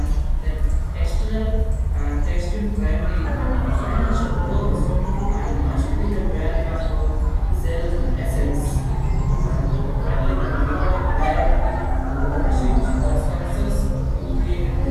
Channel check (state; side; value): identical; both; correlation 1.00